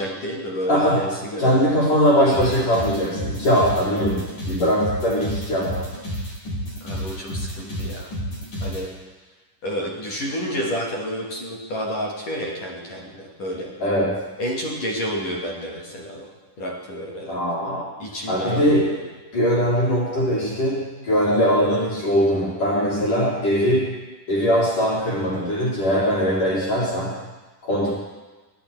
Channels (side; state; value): right; late; 10 ms